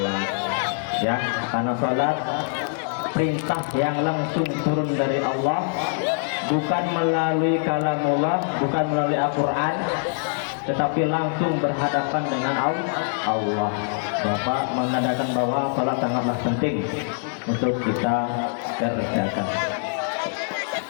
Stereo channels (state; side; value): silent; right; digital silence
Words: ya, karena sholat perintah yang langsung turun dari Allah, bukan melalui kalamullah, bukan melalui Al-Quran, tetapi langsung berhadapan dengan Allah. Bapak mengadakan bahwa sholat sangatlah penting untuk kita kerjakan.